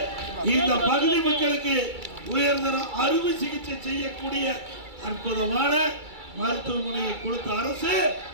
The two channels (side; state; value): left; late; 2.3 ms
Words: இந்த பகுதி மக்களுக்கு உயர்தர அறுவை சிகிச்சை செய்யக்கூடிய அற்புதமான மருத்துவமனையை கொடுத்த அரசு